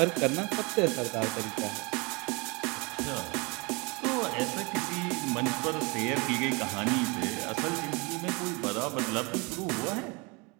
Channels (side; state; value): left; quieter; 28.4 dB